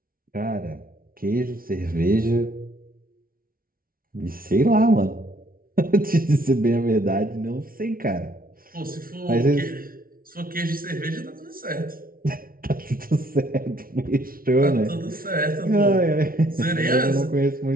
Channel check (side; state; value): left; late; 0.43 ms